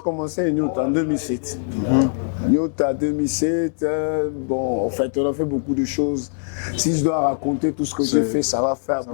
commencé Nyota en 2007. Nyota 2007, bon, en fait, on a fait beaucoup de choses. Si je dois raconter tout ce que j'ai fait, ça va faire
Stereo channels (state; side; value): silent; right; digital silence